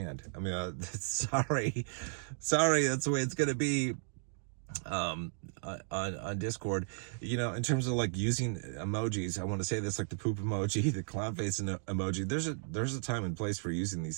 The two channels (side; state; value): left; silent; digital silence